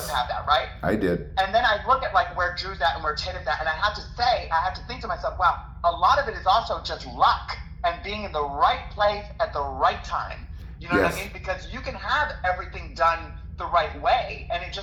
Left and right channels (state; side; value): identical; both; correlation 1.00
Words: have that, right? I did. And then I look at where Drew's at and where Tatum's at, and I have to think to myself, wow, a lot of it is also just luck and being in the right place at the right time. You know what I mean? Because you can have everything done the right way, and it